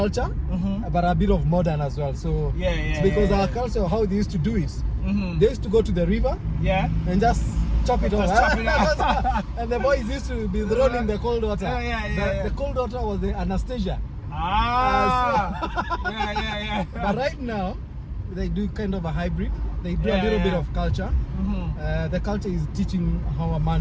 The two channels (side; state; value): both; identical; correlation 1.00